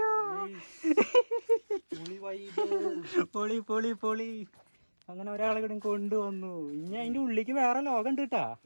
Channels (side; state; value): both; inverted; correlation -1.00